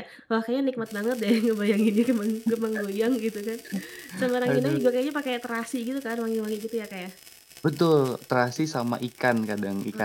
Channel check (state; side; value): identical; both; correlation 1.00